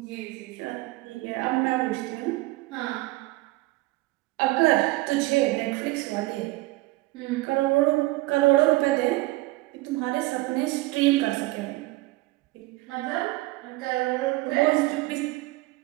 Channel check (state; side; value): quieter; left; 20.4 dB